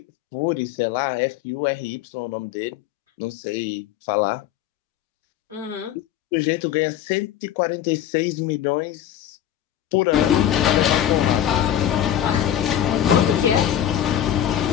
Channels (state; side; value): quieter; right; 10.9 dB